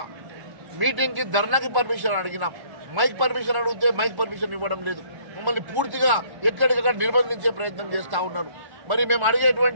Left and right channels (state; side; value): late; left; 1.1 ms